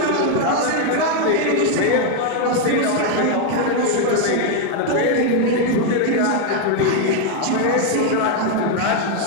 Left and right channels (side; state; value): both; different; correlation 0.01